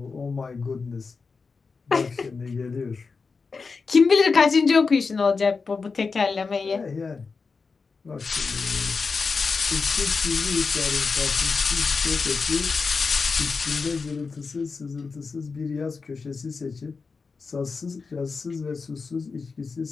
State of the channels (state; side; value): quieter; right; 4.7 dB